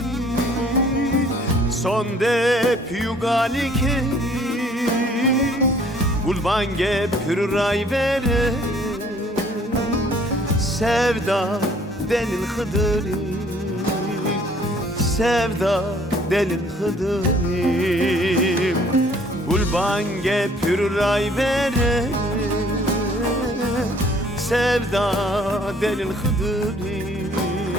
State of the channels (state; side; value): normal; both; correlation 0.58